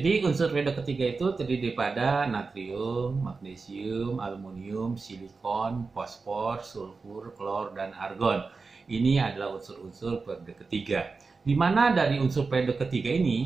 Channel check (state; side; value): quieter; left; 4.3 dB